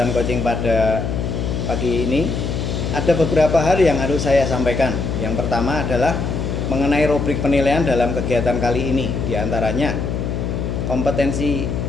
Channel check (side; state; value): left; noise; hum, 2 dB below the sound